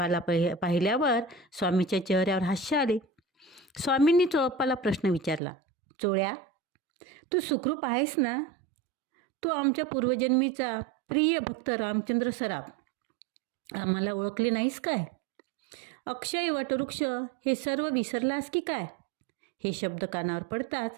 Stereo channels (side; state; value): left; drops out; at 5.4 s